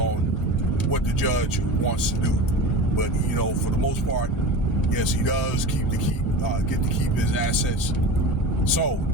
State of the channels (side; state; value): both; normal; correlation 0.31